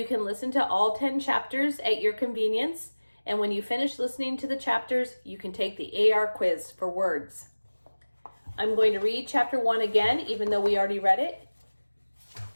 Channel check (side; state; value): both; inverted; correlation -1.00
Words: can listen to all 10 chapters at your convenience. And when you finish listening to the chapters, you can take the AR quiz for words. I'm going to read chapter 1 again, even though we already read it,